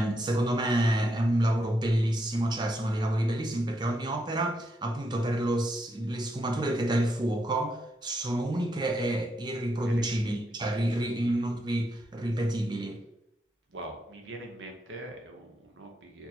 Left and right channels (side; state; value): both; normal; correlation 0.80